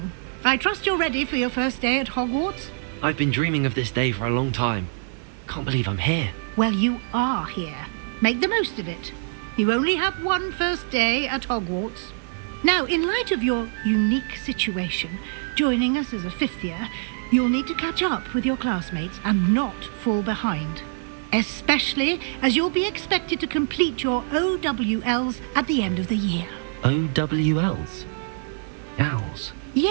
I trust you're ready for your first day at Hogwarts? I've been dreaming of this day for a long time. Can't believe I'm here. Well, you are here. Make the most of it. You only have one first day at Hogwarts. Now, in light of your unique situation, joining us as a 5th year, you'll need to catch up with your classmates and not fall behind. Especially as you'll be expected to complete your OWLs at the end of the year. OWLs? Owls?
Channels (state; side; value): silent; left; digital silence